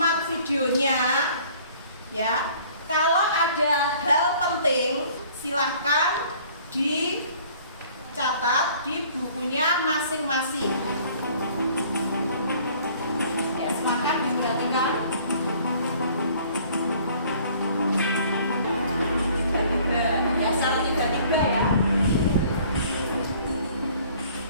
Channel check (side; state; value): both; inverted; correlation -0.54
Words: videonya ya. Kalau ada hal penting silahkan dicatat di bukunya masing-masing. Ya, silakan diperhatikan. Tiba-tiba ya, secara tiba-tiba ya.